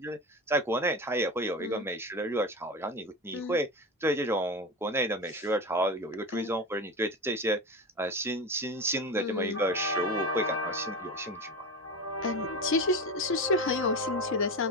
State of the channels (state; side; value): normal; both; correlation 0.24